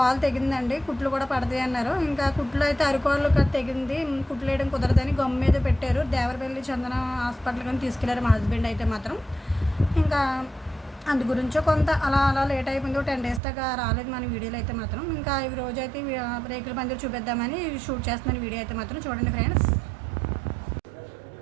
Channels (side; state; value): left; drops out; at 13.4 s